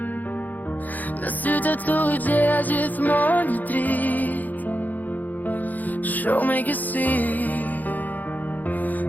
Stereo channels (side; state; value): right; late; 0.083 ms